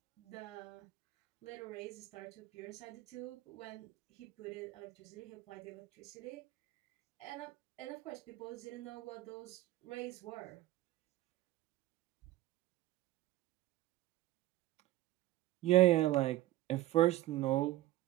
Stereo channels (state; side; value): quieter; left; 16.1 dB